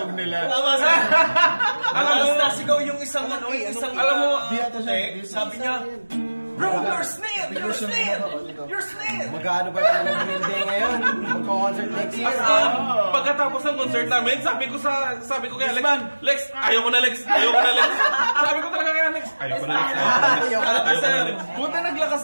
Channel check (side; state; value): both; inverted; correlation -1.00